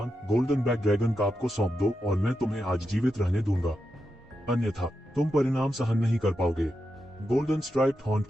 गोल्डन बैक ड्रैगन का आपको सौंप दो और मैं तुम्हें आज जीवित रहने दूंगा, अन्यथा तुम परिणाम सहन नहीं कर पाओगे। गोल्डन स्ट्राइप्ड हॉर्न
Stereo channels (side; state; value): both; normal; correlation 0.87